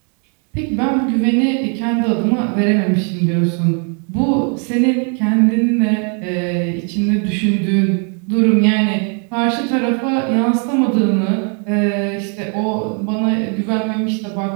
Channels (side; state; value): left; quieter; 39.8 dB